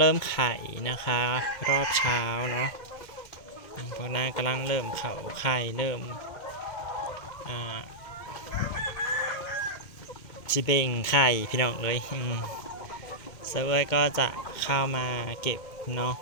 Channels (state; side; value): late; right; 2.1 ms